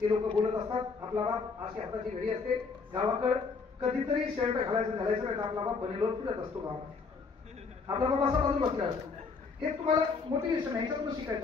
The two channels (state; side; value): quieter; right; 4.8 dB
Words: ते लोक बोलत असतात. आपला बाप अशी हाताची घडी असते. गावाकडे कधीतरी शर्ट घालायचं नाही तर आपला बाप बनेलोर फिरत असतो गावात. आपला बाप असा बाजूला बसलेला असतो. हे तुम्हाला मोटिवेशन आहे, याच्यातून शिकाय.